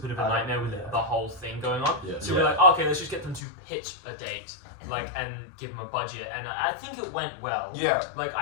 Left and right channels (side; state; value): right; drops out; at 3.4 s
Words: of a I don't- nightmare with yeah. the whole thing going on. Yeah. So we're like, oh, okay, let's just get them to pitch a date, like, and give them a budget. And I think it went well. Yeah. Like